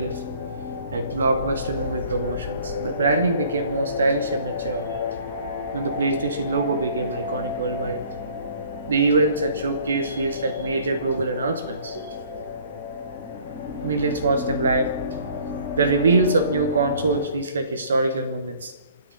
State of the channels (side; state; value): both; inverted; correlation -0.54